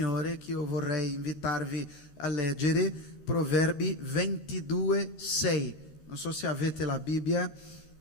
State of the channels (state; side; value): late; right; 14 ms